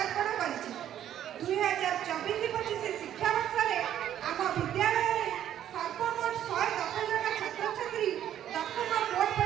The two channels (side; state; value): left; quieter; 10.9 dB